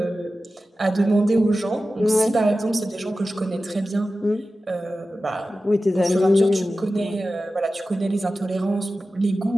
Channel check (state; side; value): normal; both; correlation 0.94